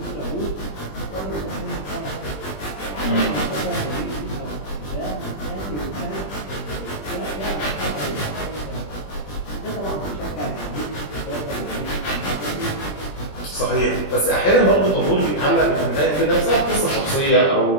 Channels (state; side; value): late; right; 20 ms